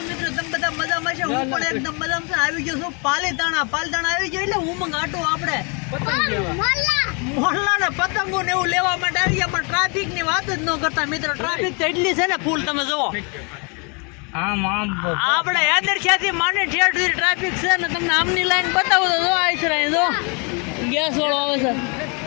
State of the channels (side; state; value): right; quieter; 34.1 dB